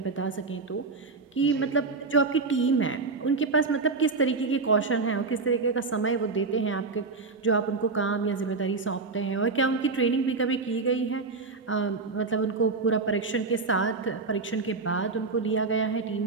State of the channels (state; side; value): quieter; left; 4.1 dB